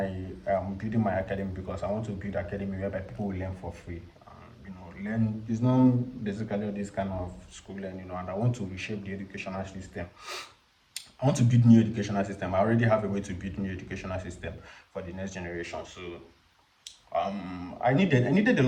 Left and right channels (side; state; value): both; identical; correlation 1.00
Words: building my academy because I want to build academy whereby people will learn for free. You know, learn it's not basically this kind of school learning, you know, and I want to reshape the educational system. I want to build new educational system. I already have a way to build new educational system for the next generation. So I needed a